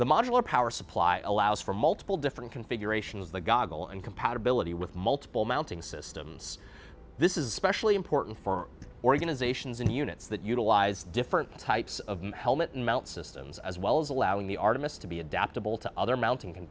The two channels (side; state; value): both; identical; correlation 1.00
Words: modular power supply allows for multiple different configurations of the goggle and compatibility with multiple mounting systems. This is especially important for organizations and units that utilize different types of helmet and mount systems, as well as allowing the Artemis to be adaptable to other mounting